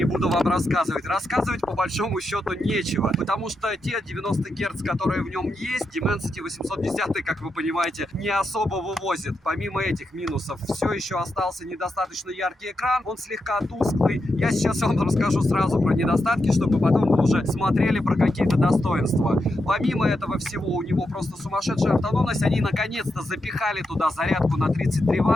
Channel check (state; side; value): normal; both; correlation 0.85